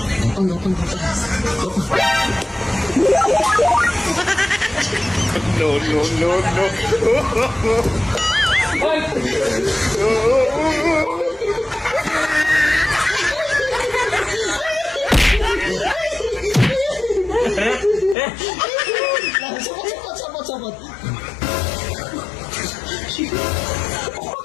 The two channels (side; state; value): right; drops out; at 18.2 s